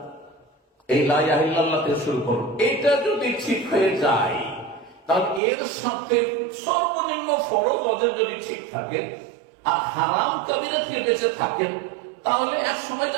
এই লা ইলাহা ইল্লাল্লাহ থেকে শুরু করুন। এটা যদি ঠিক হয়ে যায়, তাহলে এর সাথে সর্বনিম্ন ফরজ ওদের যদি ঠিক থাকে আর হারাম কাবিরা থেকে বেঁচে থাকেন, তাহলে এক সময়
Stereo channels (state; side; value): drops out; left; at 5.4 s